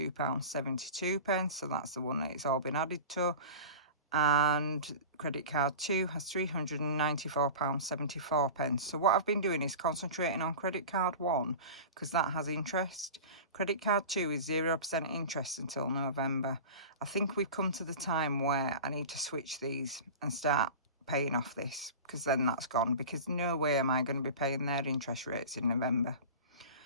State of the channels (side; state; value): both; inverted; correlation -0.34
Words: So that's the one that it's all been added to. And credit card 2 has £394.74. So what I've been doing is concentrating on credit card 1 because that has interest. Credit card 2 is 0% interest until November. I think we've come to the time where I need to switch these and start paying off this, because then that's gone, because no way am I going to be paying their interest rates in November.